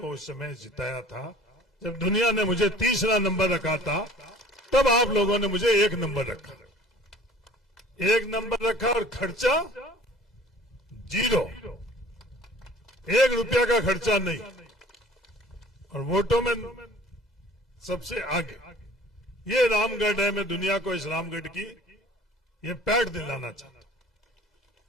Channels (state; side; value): normal; both; correlation 0.49